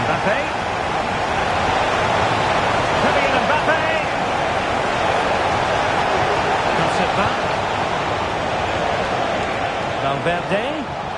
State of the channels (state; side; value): identical; both; correlation 1.00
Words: Mbappe. Kylian Mbappe. Cuts it back. Valverde.